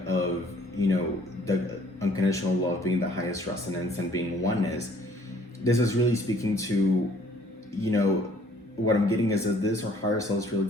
of, the unconditional love being the highest resonance and being oneness, this is really speaking to, what I'm getting is that this, our higher self, is really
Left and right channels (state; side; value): normal; both; correlation 0.59